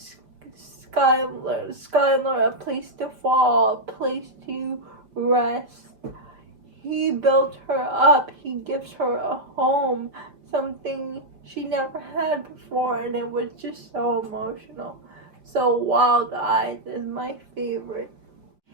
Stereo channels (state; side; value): late; left; 5.0 ms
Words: Skylar a place to fall, a place to rest. He built her up. He gives her a home, something she never had before, and it was just so emotional. So Wild Eyes is my favorite.